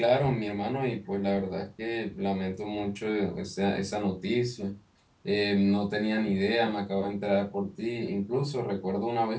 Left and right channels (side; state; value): both; identical; correlation 1.00